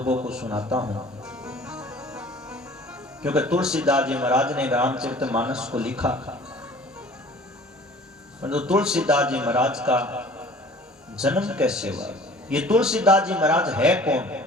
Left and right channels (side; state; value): both; normal; correlation 0.48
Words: को सुनाता हूं, क्योंकि तुलसीदास जी महाराज ने रामचरितमानस को लिखा। तो तुलसीदास जी महाराज का जन्म कैसे हुआ? ये तुलसीदास जी महाराज है कौन?